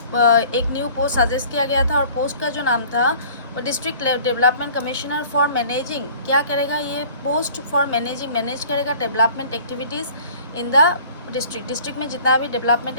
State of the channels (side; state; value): both; inverted; correlation -0.49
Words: सजेस्ट किया गया था, और पोस्ट का जो नाम था वो district development commissioner for managing, क्या करेगा ये पोस्ट, फॉर मैनेज करेगा development activities in the district में जितना भी डेवलपमेंट